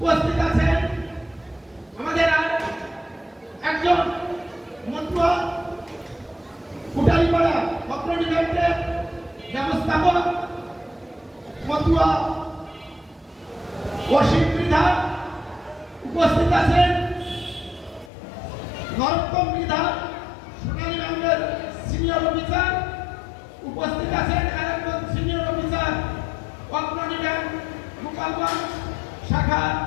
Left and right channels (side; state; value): right; drops out; at 18.1 s